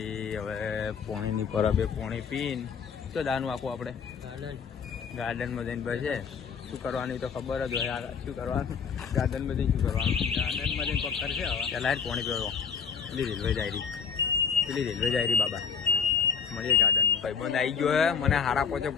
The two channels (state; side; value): quieter; right; 6.5 dB